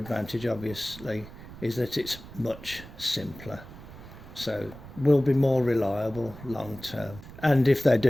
obviously, is that it's much simpler. So will be more reliable long term. And if they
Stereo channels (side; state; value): right; noise; rumble, 16 dB below the sound